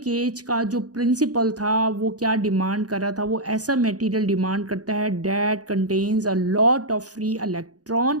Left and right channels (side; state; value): left; late; 0.68 ms